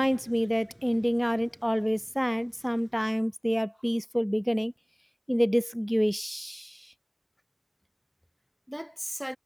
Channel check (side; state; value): both; identical; correlation 1.00